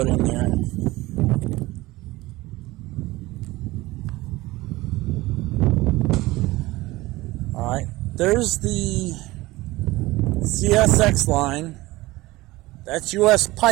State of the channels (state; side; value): quieter; left; 19.4 dB